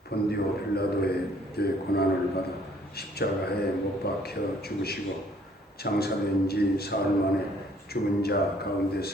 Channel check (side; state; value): both; normal; correlation 0.61